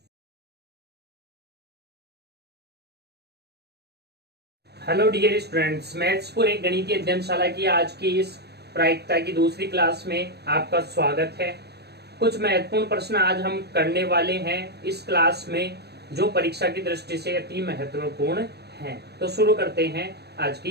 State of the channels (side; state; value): left; late; 0.48 ms